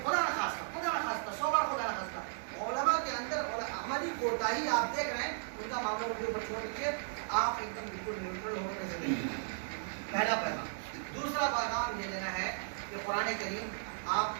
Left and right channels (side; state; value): left; silent; 54 dB below the other